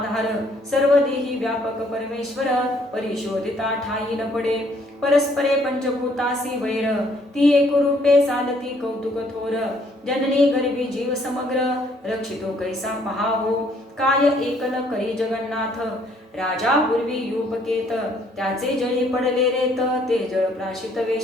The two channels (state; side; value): normal; both; correlation 0.65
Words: सर्व देही व्यापक परमेश्वर, परिशोधिता ठाई न पडे, परस्परे पंचभूतासी वैर, ती एकरूपे चालती कौतुक थोर, जननी गर्भी जीव समग्र, रक्षितो कैसा पहावो, काय एकल करी जगन्नाथ, राजा पूर्वी युपकेत, त्याचे जळी पडले रेत, ते जळ प्राशित